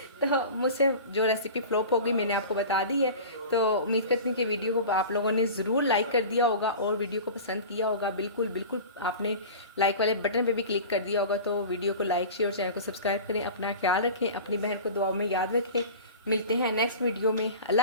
तो मुझसे जो रेसिपी फ्लॉप होगी मैंने आपको बता दी है, तो उम्मीद करती हूँ कि वीडियो को आप लोगों ने ज़रूर लाइक कर दिया होगा और वीडियो को पसंद किया होगा। बिल्कुल आपने लाइक वाले बटन पे भी क्लिक कर दिया होगा, तो वीडियो को लाइक शेयर और चैनल को सब्सक्राइब करें। अपना ख्याल रखें, अपनी बहन को दुआओं में याद रखें। मिलते हैं नेक्स्ट वीडियो में।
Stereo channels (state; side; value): inverted; both; correlation -0.35